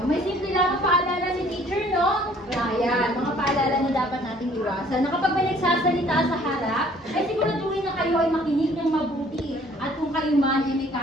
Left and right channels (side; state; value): both; normal; correlation 0.57